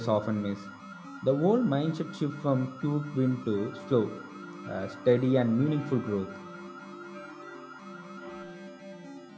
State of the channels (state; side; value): identical; both; correlation 1.00